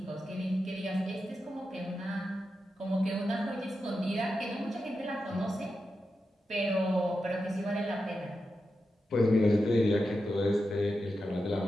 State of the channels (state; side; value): normal; both; correlation 0.89